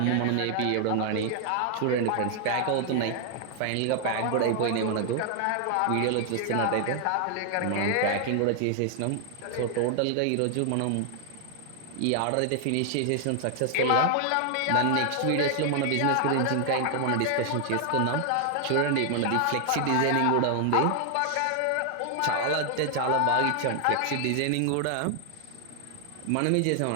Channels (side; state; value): both; different; correlation 0.00